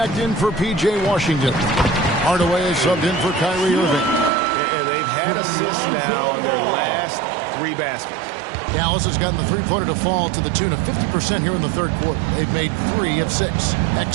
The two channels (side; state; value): left; drops out; at 4.3 s